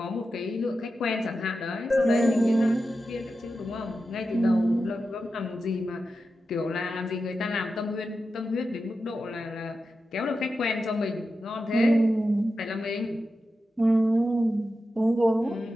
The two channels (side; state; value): both; normal; correlation 0.91